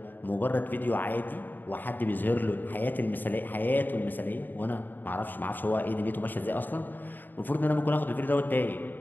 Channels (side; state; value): right; late; 0.090 ms